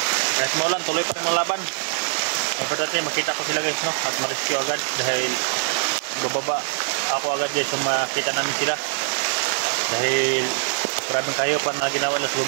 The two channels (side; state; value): left; silent; digital silence